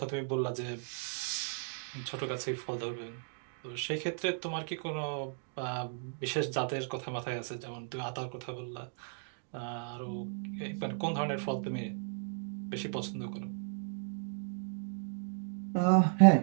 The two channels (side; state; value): left; silent; digital silence